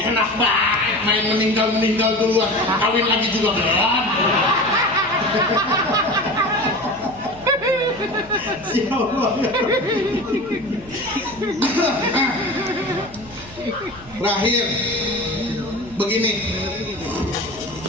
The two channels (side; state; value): left; noise; hum, 21 dB below the sound